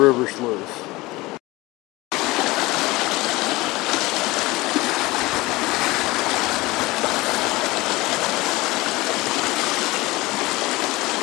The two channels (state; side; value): quieter; right; 20.8 dB